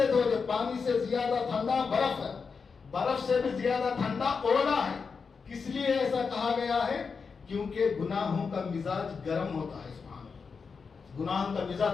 دھو دے، پانی سے زیادہ ٹھنڈا برف ہے، برف سے بھی زیادہ ٹھنڈا اولا ہے۔ کس لیے ایسا کہا گیا ہے؟ کیونکہ گناہوں کا مزاج گرم ہوتا ہے، سبحان اللہ، گناہوں کا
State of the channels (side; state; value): right; quieter; 5.3 dB